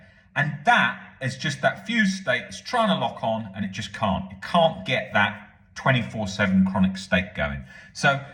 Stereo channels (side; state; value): both; identical; correlation 1.00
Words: And that is just that fused state that's trying to lock on, and it just can't. It can't get that 24/7 chronic state going. So